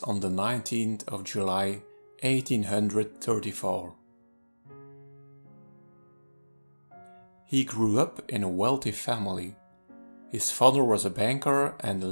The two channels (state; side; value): inverted; both; correlation -1.00